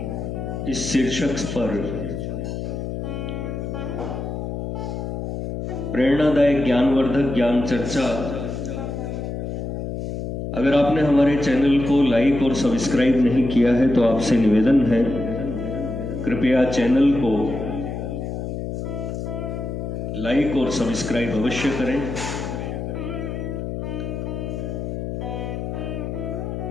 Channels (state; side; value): noise; left; hum, 5 dB below the sound